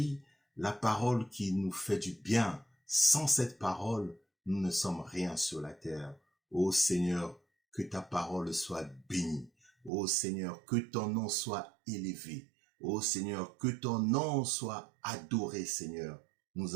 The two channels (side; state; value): left; drops out; at 9.9 s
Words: la parole qui nous fait du bien. Sans cette parole, nous ne sommes rien sur la terre. Ô Seigneur, que ta parole soit bénie. Ô Seigneur, que ton nom soit élevé. Ô Seigneur, que ton nom soit adoré, Seigneur.